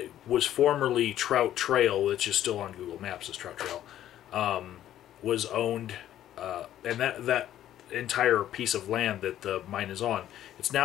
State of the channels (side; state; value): right; quieter; 12.0 dB